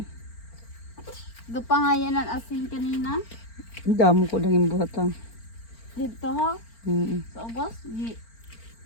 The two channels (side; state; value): right; late; 4.4 ms